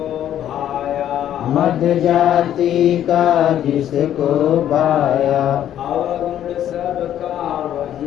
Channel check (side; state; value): right; quieter; 11.0 dB